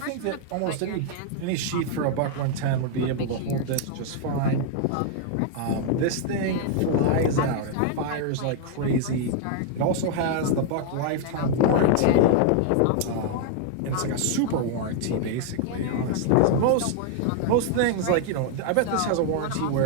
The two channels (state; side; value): different; both; correlation 0.00